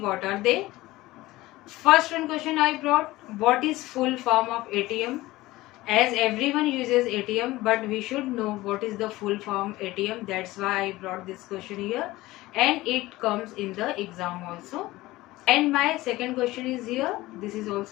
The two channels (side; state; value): right; quieter; 18.4 dB